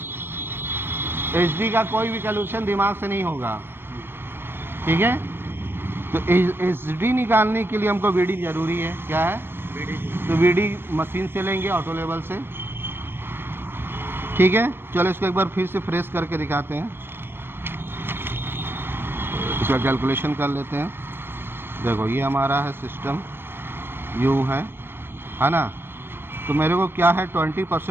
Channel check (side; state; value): left; late; 0.10 ms